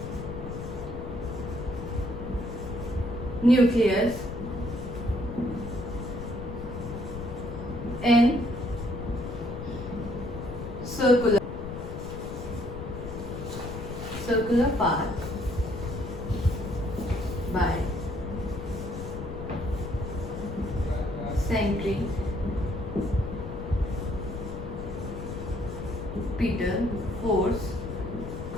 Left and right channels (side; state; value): left; noise; rumble, 9 dB below the sound